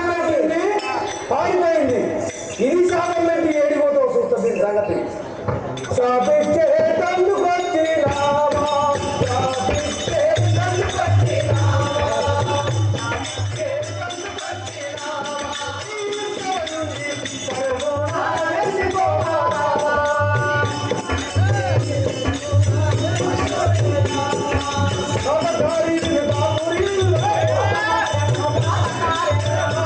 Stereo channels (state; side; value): identical; both; correlation 1.00